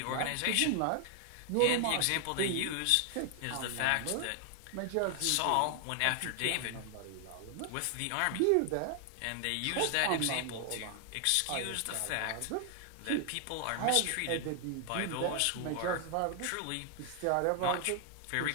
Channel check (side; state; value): both; different; correlation 0.00